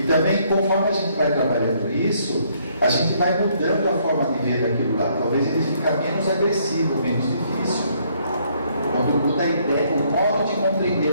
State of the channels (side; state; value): both; inverted; correlation -0.68